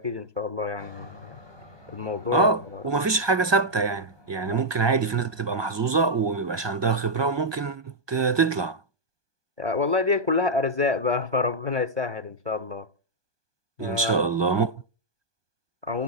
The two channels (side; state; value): left; late; 1.2 ms